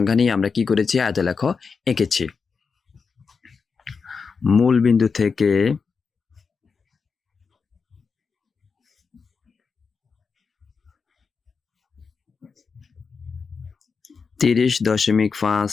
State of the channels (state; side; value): quieter; right; 5.3 dB